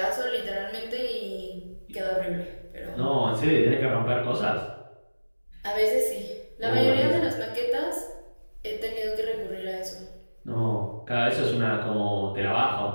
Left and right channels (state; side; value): inverted; both; correlation -1.00